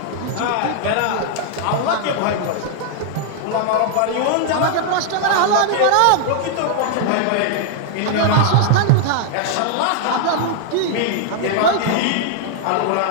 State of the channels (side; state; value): both; different; correlation 0.00